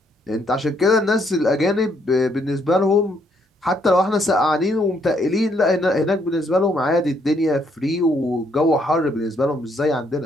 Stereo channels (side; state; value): both; normal; correlation 0.71